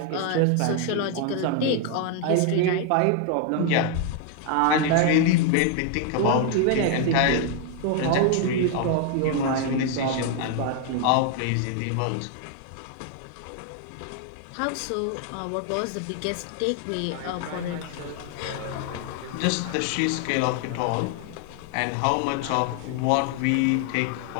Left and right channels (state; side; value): different; both; correlation 0.00